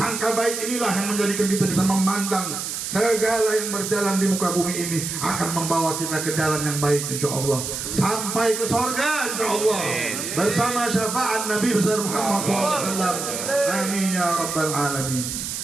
baik inilah yang menjadikan kita bisa memandang segala yang berjalan di muka bumi ini akan membawa kita ke jalan yang baik, insya Allah, sampai ke surga, insya Allah, bersama syafaat Nabi besar Muhammad SAW. Amin ya rabbal alamin.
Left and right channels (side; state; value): right; noise; hiss, 5 dB below the sound